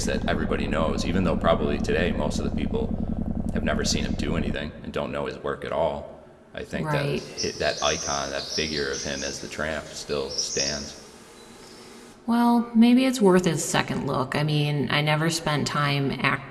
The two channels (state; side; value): identical; both; correlation 1.00